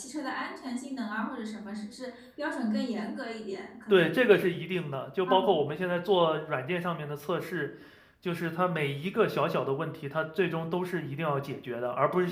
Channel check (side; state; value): both; identical; correlation 1.00